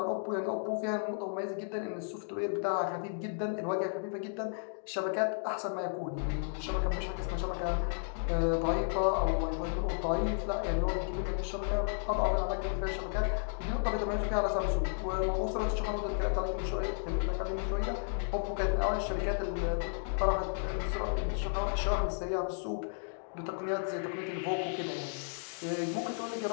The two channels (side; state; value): right; silent; digital silence